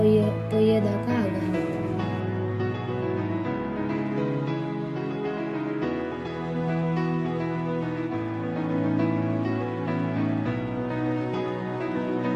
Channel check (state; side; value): identical; both; correlation 1.00